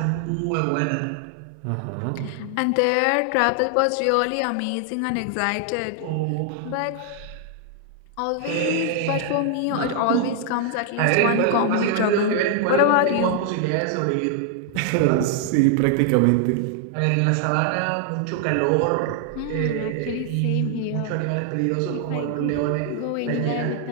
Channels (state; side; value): different; both; correlation 0.00